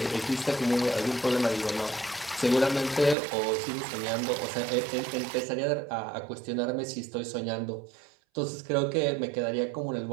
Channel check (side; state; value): left; drops out; at 3.2 s